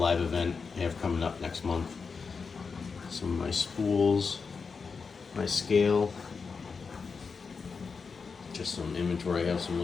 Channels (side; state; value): right; quieter; 5.1 dB